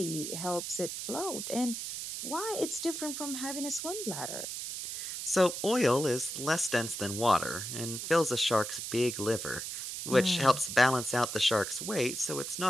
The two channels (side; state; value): right; noise; hiss, 5 dB below the sound